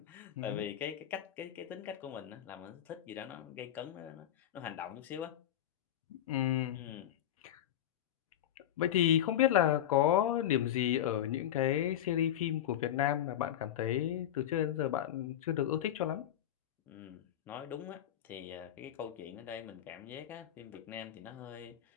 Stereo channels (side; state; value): right; quieter; 11.4 dB